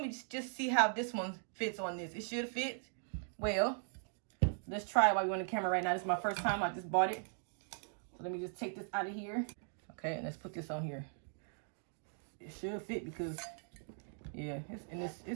me just see how this one fits on this. It should fit well. Let's try it while we're on the camera right now. This is my first time. I just bought it. So let me just take this out of here. Okay, and let's put this on here. It should fit because, yeah,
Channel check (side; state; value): left; silent; 52 dB below the other